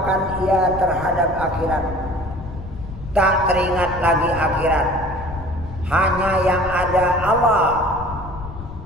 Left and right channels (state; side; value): noise; left; rumble, 12 dB below the sound